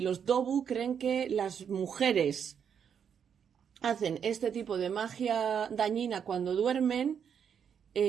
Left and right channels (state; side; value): quieter; left; 7.7 dB